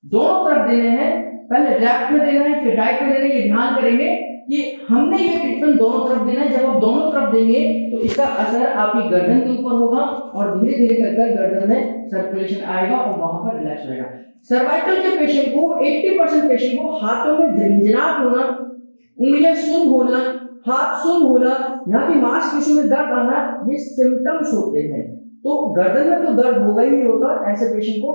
दोनों तरफ देने हैं, पहले लेफ्ट में देना है फिर राइट में देना है, ये ध्यान करेंगे कि हमने ये ट्रीटमेंट दोनों तरफ देना है। जब आप दोनों तरफ देंगे तो इसका असर आपकी गर्दन के ऊपर होगा और धीरे धीरे कर गर्दन में सर्कुलेशन आएगा और वहां पर रिलैक्स होगा। सर्वाइकल के पेशेंट को 80% पेशेंट को हाथों में झंझनाहट होना, उंगलियां सुन्न होना, हाथ सुन्न होना, यहाँ की मांसपेशियों में दर्द आना, ये सिम्टम्स होते हैं। तो गर्दन में तो दर्द होगा ही होता है, ऐसे पेशेंट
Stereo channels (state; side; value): inverted; both; correlation -1.00